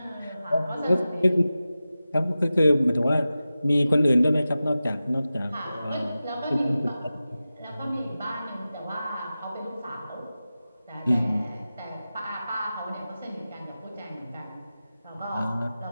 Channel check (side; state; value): both; inverted; correlation -0.94